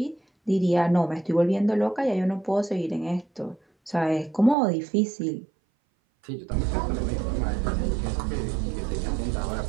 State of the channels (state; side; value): drops out; left; at 4.5 s